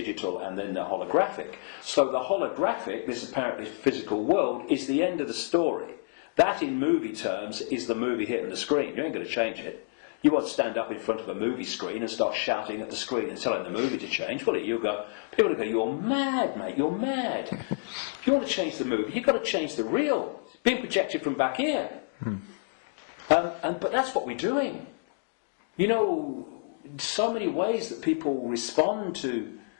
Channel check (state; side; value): silent; right; digital silence